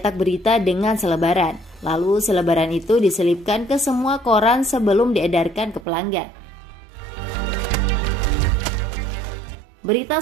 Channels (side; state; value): left; drops out; at 5.9 s